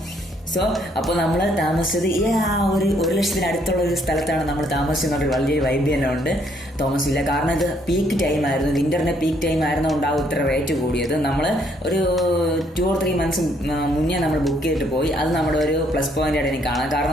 സോ അപ്പോൾ നമ്മൾ താമസിച്ചത് ഈ ആ ഒരു 1,00,000 അടുത്തുള്ള ഒരു സ്ഥലത്താണ് നമ്മൾ താമസിച്ചെന്നൊരു വലിയൊരു വൈബ് തന്നെ ഉണ്ട് തോമസ് വില്ല. കാരണം ഇത് പീക്ക് ടൈം ആയിരുന്നു, വിൻ്ററിൻ്റെ പീക്ക് ടൈം ആയിരുന്നുകൊണ്ടാവും ഇത്ര റേറ്റ് കൂടിയത്. നമ്മൾ ഒരു 2 or 3 months മുന്നേ നമ്മൾ ബുക്ക് ചെയ്തിട്ട് പോയി. അത് നമ്മുടെ ഒരു പ്ലസ് പോയിന്റ് ആയിട്ട് എനിക്ക് കാണാം.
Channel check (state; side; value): normal; both; correlation 0.68